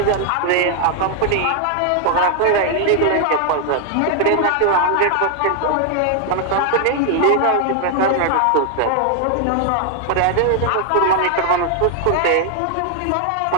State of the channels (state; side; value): different; both; correlation 0.00